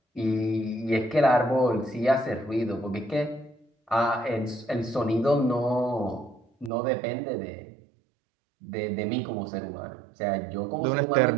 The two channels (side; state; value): left; drops out; at 6.7 s